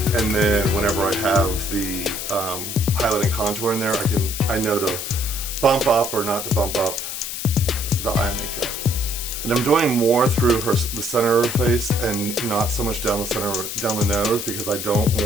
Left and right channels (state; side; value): noise; left; hiss, 6 dB below the sound